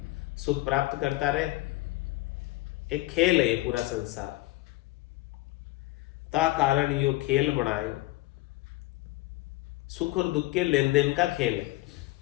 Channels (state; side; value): quieter; right; 19.1 dB